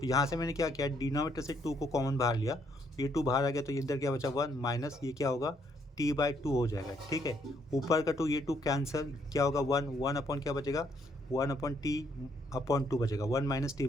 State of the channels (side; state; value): both; normal; correlation 0.71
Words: यहाँ से मैंने क्या किया, डिनोमिनेटर से 2 को कॉमन बाहर लिया, ये 2 बाहर आ गया, तो इधर क्या बचा 1 माइनस ये क्या होगा, t/2 हो जाएगा, ठीक है। ऊपर का 2, ये 2 कैंसिल, क्या होगा 1 अपॉन क्या बचेगा, 1/t/2 बचेगा, 1 माइनस